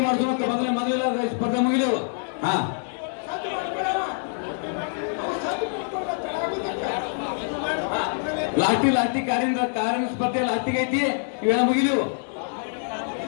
ಮಾಡ್ಸೋಣ ಮೊದಲ ಸ್ಪರ್ಧೆ ಮುಗಿದೆವು ಹಾ ಲಾಸ್ಟಿ ಕಾರಿನ ಸ್ಪರ್ಧೆ ಲಾಸ್ಟಿಗೆ ಐತಿ ಇವೆಲ್ಲ ಮುಗಿದೆವು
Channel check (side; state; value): right; silent; 62 dB below the other